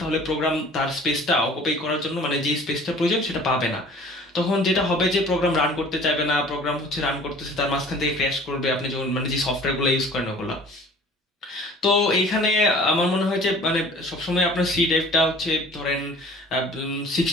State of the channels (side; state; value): both; normal; correlation 0.48